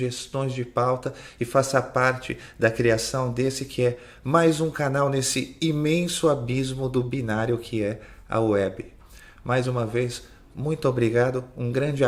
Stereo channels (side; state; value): both; identical; correlation 1.00